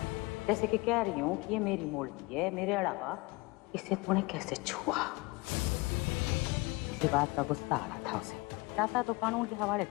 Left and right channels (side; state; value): right; quieter; 24.7 dB